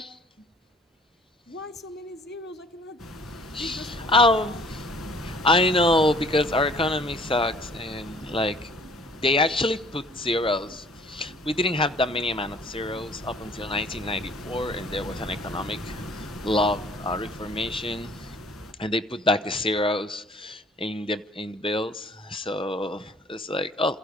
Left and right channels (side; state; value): both; normal; correlation 0.55